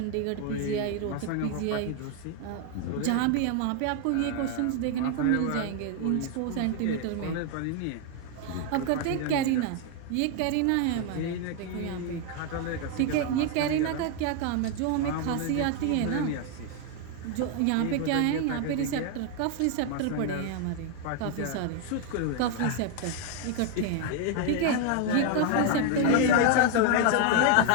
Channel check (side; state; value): both; different; correlation 0.01